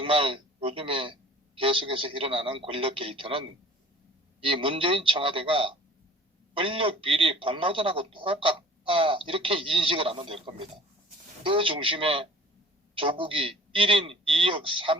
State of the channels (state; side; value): normal; both; correlation 0.45